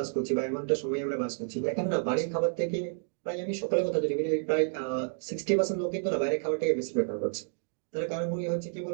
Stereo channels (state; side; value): silent; left; digital silence